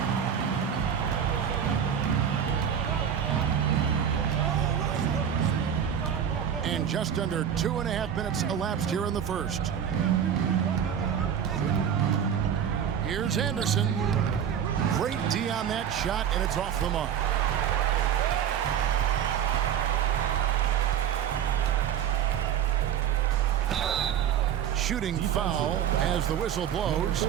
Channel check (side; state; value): left; quieter; 8.8 dB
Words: And just under 2.5 minutes elapsed here in the first. Here's Anderson. Great D on that shot, and it's off the mark. Shooting foul as the whistle blows.